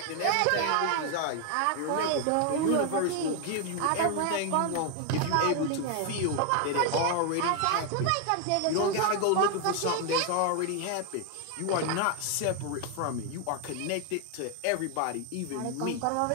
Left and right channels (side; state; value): both; different; correlation 0.01